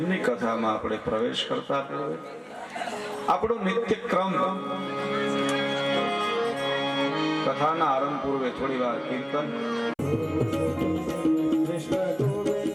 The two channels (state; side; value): identical; both; correlation 1.00